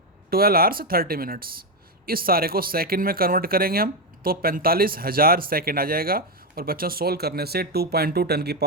12 आवर्स 30 मिनट्स। इस सारे को सेकंड में कन्वर्ट करेंगे हम तो 45,000 सेकंड आ जाएगा। और बच्चों सोल्व करने से 2.2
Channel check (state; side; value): normal; both; correlation 0.07